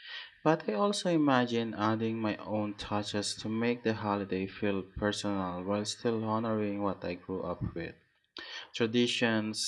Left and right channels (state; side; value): identical; both; correlation 1.00